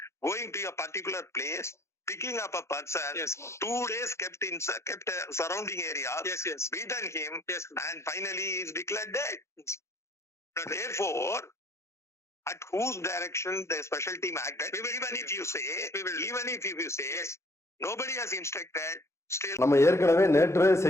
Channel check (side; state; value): right; late; 0.13 ms